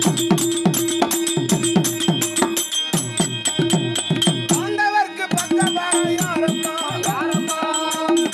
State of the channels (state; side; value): identical; both; correlation 1.00